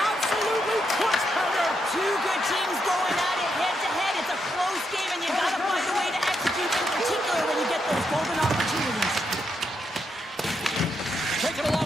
Absolutely clutch powder. Two good teams going at it head-to-head. It's a close game, and you've got to find a way to execute, in particular when you get those golden opportunities. Taken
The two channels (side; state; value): both; normal; correlation 0.81